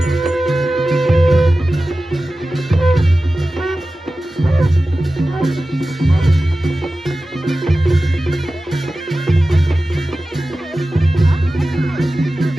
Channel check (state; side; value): normal; both; correlation 0.95